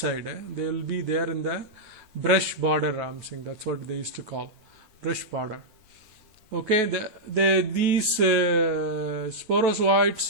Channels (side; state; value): left; late; 9.1 ms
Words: They will be there in the brush border. I'm saying that's what they used to call brush border. Okay, these